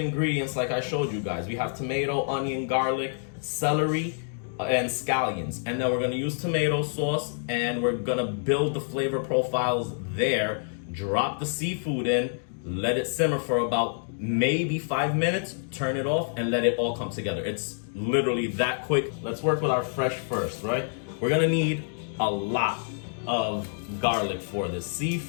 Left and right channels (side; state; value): right; silent; digital silence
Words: like I showed you guys. We have tomato, onion, garlic, celery, and scallions. And then we're gonna use tomato sauce, and we're gonna build the flavor profiles there. Drop the seafood in, let it simmer for about maybe 5 minutes, turn it off, and let it all come together. It's literally that quick. Let's work with our fresh first, right? We're gonna need a lot of garlic for this.